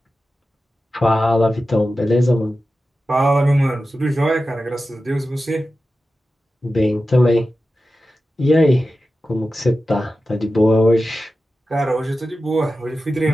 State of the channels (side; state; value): both; normal; correlation 0.93